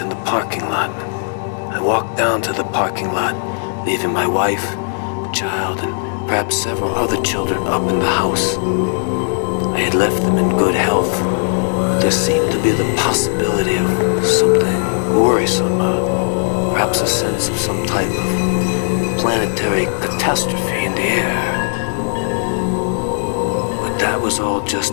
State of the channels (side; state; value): right; silent; 62 dB below the other